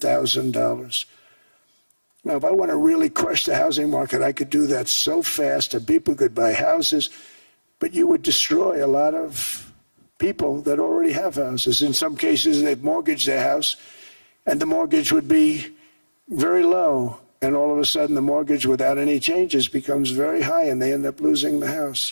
Now, if I want to really crush the housing market, I could do that so fast and people could buy houses, but you would destroy a lot of people that already have houses. In some cases, they've mortgaged their house, and the mortgage would be very low. And all of a sudden, the mortgage without any changes becomes very high, and they end up losing the house.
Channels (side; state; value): both; inverted; correlation -1.00